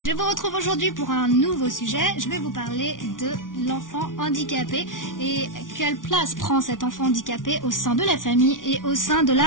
Je vous retrouve aujourd'hui pour un nouveau sujet. Je vais vous parler de l'enfant handicapé et quelle place prend cet enfant handicapé au sein de la famille et au sein de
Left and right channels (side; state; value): right; late; 0.88 ms